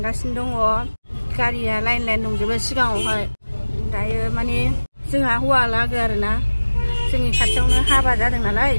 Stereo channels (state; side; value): inverted; both; correlation -1.00